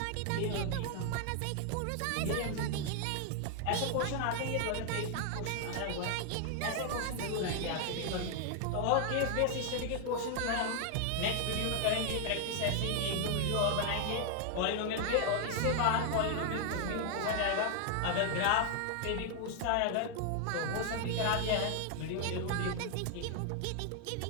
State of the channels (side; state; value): both; different; correlation 0.00